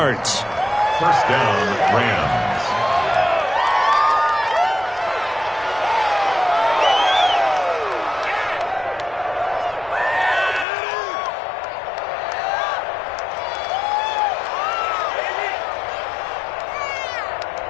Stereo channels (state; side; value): drops out; right; at 10.7 s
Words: First down, Rams.